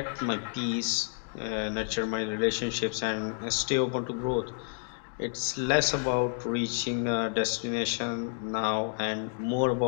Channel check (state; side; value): silent; right; 58 dB below the other